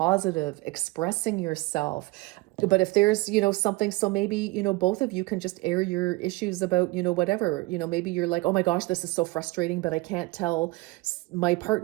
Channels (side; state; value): left; quieter; 22.5 dB